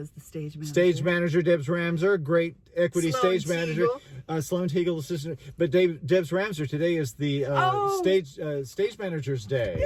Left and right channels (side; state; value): both; identical; correlation 1.00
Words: the stage manager. Stage manager, Debs Ramser, great equity Sloan stage manager. Sloan Teagle, assistant. But Debs Ramser today is the stage manager's day.